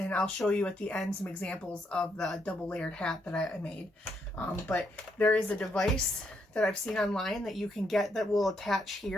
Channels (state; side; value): normal; both; correlation 0.76